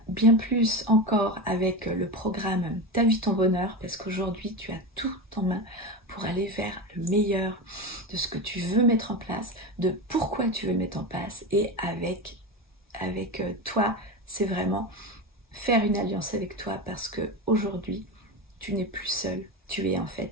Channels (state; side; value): normal; both; correlation 0.21